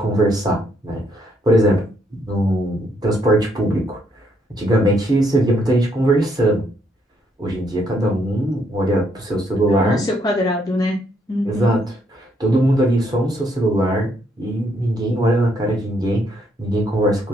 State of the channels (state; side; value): normal; both; correlation 0.72